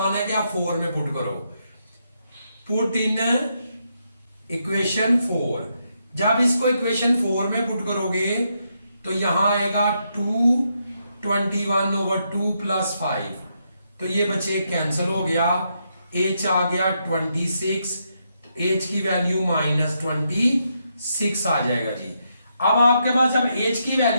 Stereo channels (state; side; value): inverted; both; correlation -0.80